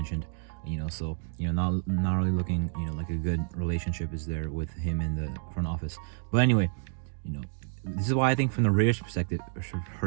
Not really looking like a good relationship is there with him in the front office. But anyway, this is why I think from the Raiders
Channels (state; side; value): silent; left; digital silence